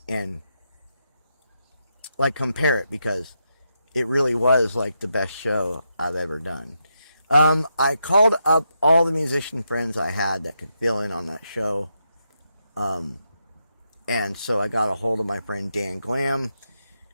and like compare it, because it really was like the best show I've ever done. I called up all the musician friends I had that could fill in on that show. And so I got a hold of my friend Dan Glam,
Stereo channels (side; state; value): both; inverted; correlation -0.83